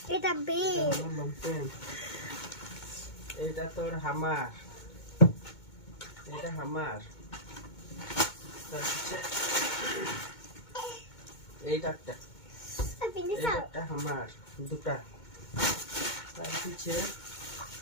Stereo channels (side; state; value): right; late; 2.2 ms